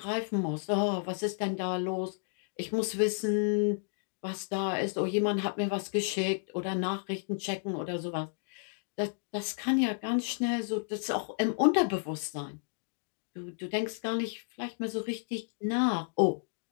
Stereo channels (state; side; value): silent; right; digital silence